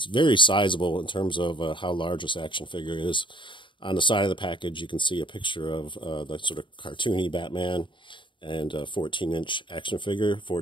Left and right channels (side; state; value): right; late; 0.24 ms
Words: very sizable in terms of how large this action figure is. On the side of the package, you can see a picture of the sort of cartoony Batman and a 14-inch action figure,